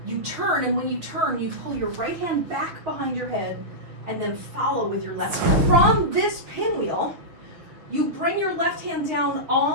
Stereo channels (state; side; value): late; left; 6.4 ms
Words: You turn, and when you turn, you pull your right hand back behind your head and then follow with your left hand. From this pinwheel, you bring your left hand down